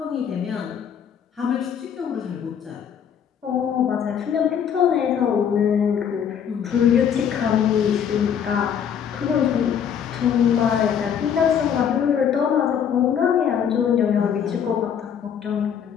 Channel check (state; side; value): quieter; right; 8.2 dB